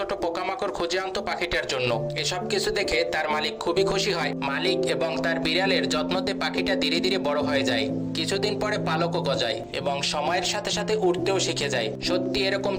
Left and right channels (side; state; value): both; identical; correlation 1.00